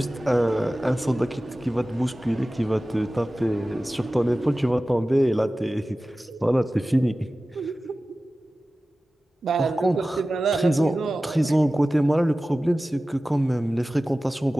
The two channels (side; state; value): both; normal; correlation 0.96